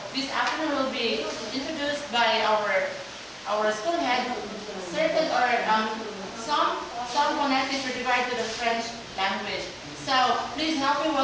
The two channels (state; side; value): identical; both; correlation 1.00